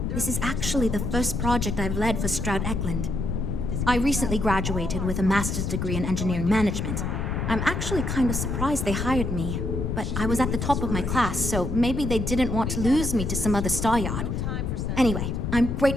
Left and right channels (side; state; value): left; noise; rumble, 2 dB below the sound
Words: This is actually the first project I've led for Stroud Eklund. I recently graduated with a master's degree in engineering management. I'm actually kind of surprised they hired me, but I was at the top of my class, so maybe they didn't want to lose me to some other star yard. Anyway, I'm